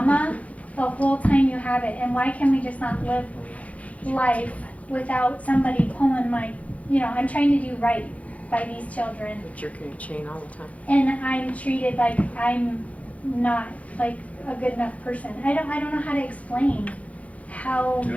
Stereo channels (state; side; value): late; right; 0.067 ms